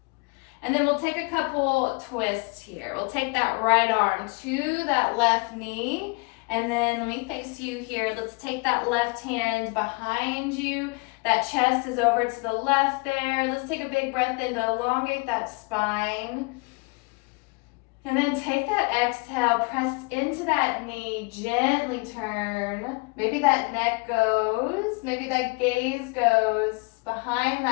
And then we'll take a couple twists here. We'll take that right arm to that left knee. And then let me face you here. Let's take that left hand behind you. That chest is over to the left there. Let's take a big breath in to elongate that spine. And then take that exhale, press into that knee, gently turn. Maybe that neck goes, maybe that gaze goes behind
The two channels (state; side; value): quieter; right; 30.3 dB